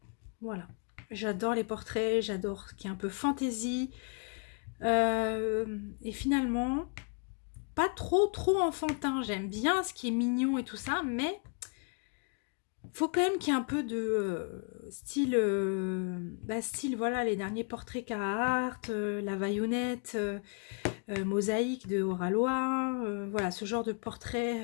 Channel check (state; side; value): quieter; right; 38.9 dB